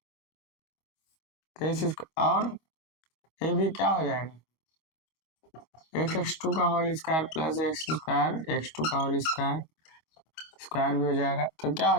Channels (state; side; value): late; right; 25 ms